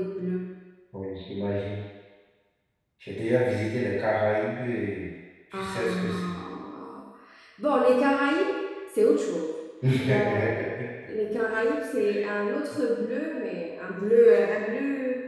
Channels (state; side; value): identical; both; correlation 1.00